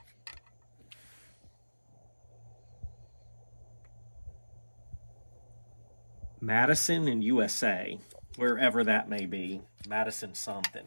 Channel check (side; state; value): both; inverted; correlation -1.00